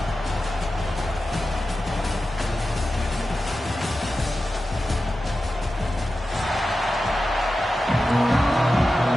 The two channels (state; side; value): normal; both; correlation 0.92